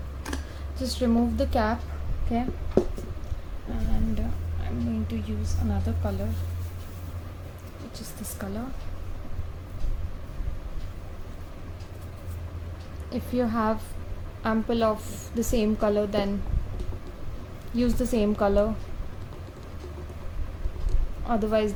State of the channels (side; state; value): both; identical; correlation 1.00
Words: Just remove the cap, okay, and I'm going to use another color, which is this color. If you have ample of the same color, then use the same color. Otherwise